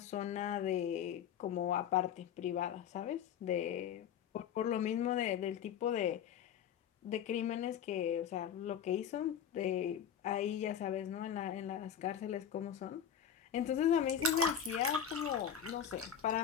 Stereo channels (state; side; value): quieter; right; 8.7 dB